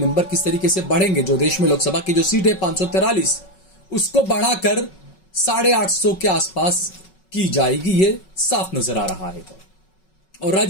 किस तरीके से बढ़ेंगे। जो देश में लोकसभा की जो सीट है 543, उसको बढ़ाकर 850 के आसपास की जाएगी, ये साफ नजर आ रहा है। और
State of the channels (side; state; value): right; late; 5.4 ms